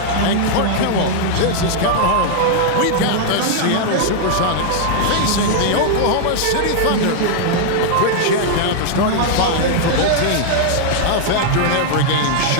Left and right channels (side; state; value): both; different; correlation -0.01